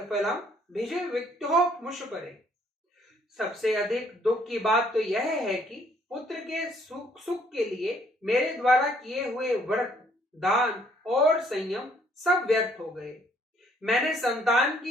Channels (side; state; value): both; normal; correlation 0.64